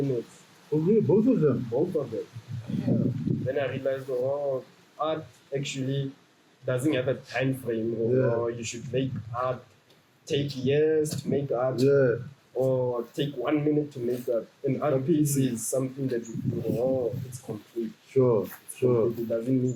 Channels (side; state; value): both; identical; correlation 1.00